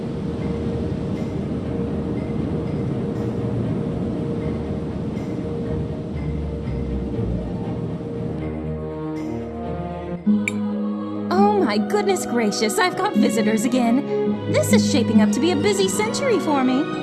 My goodness gracious, I've got visitors again. This is shaping up to be a busy century for me.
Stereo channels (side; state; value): both; identical; correlation 1.00